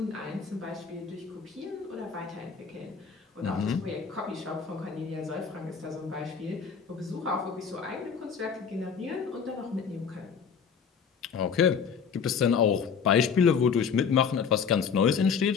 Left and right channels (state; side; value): quieter; right; 6.4 dB